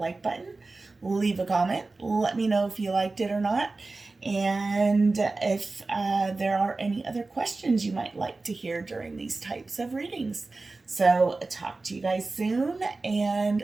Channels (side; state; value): left; quieter; 3.5 dB